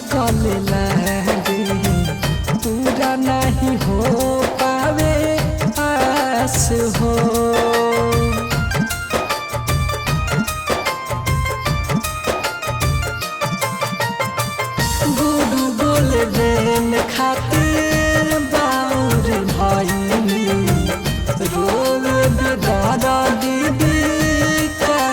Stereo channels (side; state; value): both; identical; correlation 1.00